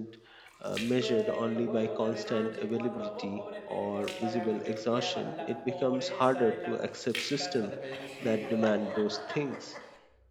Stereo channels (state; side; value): identical; both; correlation 1.00